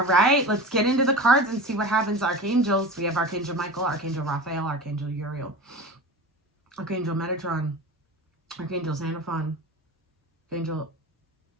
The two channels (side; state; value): both; normal; correlation 0.32